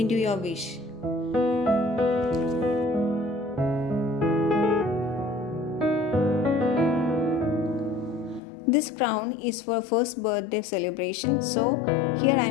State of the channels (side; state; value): right; drops out; at 8.4 s